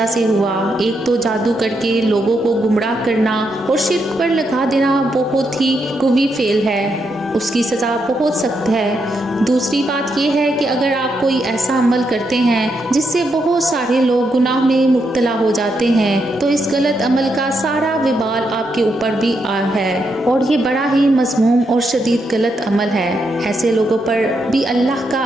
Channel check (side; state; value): both; normal; correlation 0.81